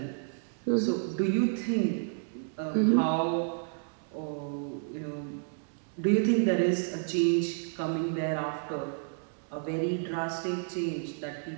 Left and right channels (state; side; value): silent; left; digital silence